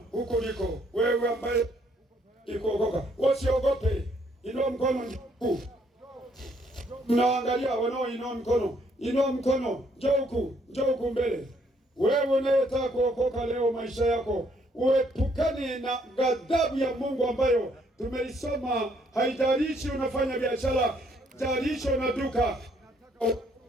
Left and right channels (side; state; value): both; normal; correlation 0.68